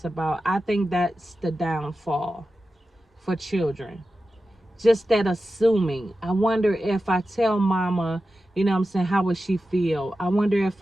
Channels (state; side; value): normal; both; correlation 0.92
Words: about. I think that's the downfall for children. Just that assuming. I wonder if I tell mama, you know what I'm saying, how would she feel? I wonder if